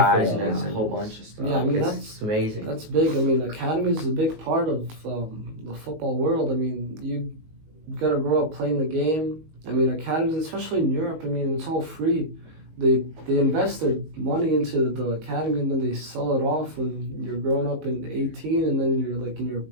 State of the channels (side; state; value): left; late; 19 ms